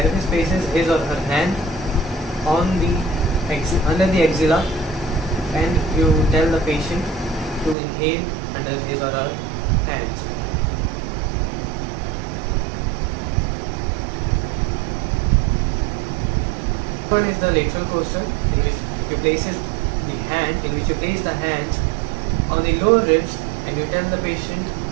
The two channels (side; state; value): left; drops out; at 7.8 s